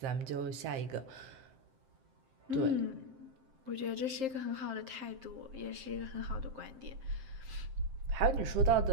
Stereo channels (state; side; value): late; left; 7.6 ms